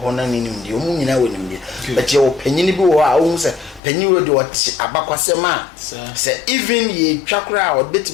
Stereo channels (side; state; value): right; drops out; at 3.8 s